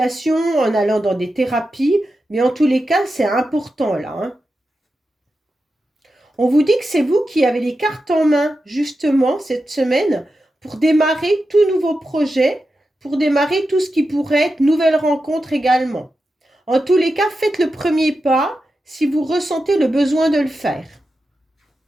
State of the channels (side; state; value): both; normal; correlation 0.90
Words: en allant dans des thérapies. Mais en tous les cas, c'est important là, hein. On vous dit que c'est vous qui avez les cartes en main, justement, cette semaine, pour démarrer tout nouveau projet, pour démarrer tout ce qui pourrait être nouvelle rencontre également. En tous les cas, faites le premier pas si vous ressentez le besoin de le faire.